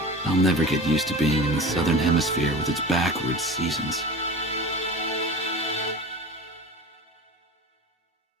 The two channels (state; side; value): normal; both; correlation 0.34